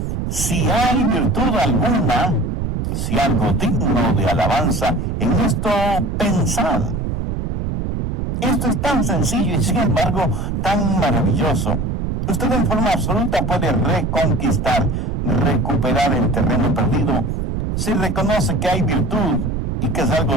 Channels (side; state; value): right; noise; rumble, 2 dB below the sound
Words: si hay virtud alguna, si algo digno de alabanza, en esto pensad. Esto es tan sencillo y sin embargo tan maravilloso. Usted en forma absoluta puede reconquistar, recuperar el terreno perdido si reconoce que hay virtud y que es